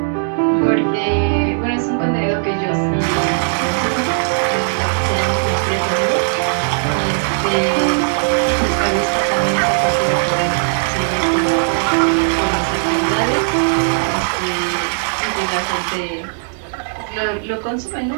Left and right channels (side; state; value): left; silent; 64 dB below the other